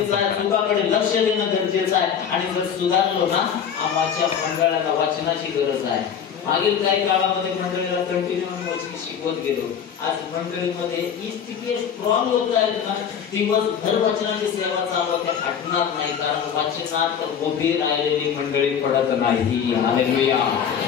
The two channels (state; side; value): quieter; right; 7.8 dB